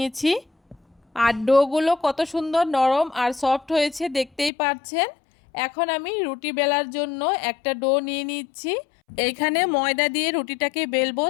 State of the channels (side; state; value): right; drops out; at 4.5 s